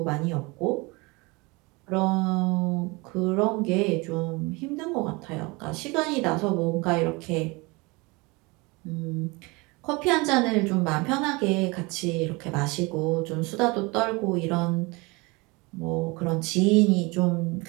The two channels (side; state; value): left; quieter; 25.8 dB